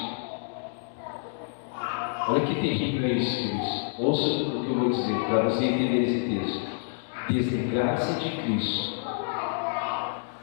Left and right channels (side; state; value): right; silent; digital silence